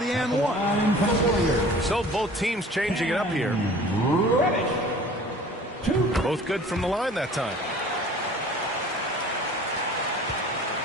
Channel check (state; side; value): normal; both; correlation 0.46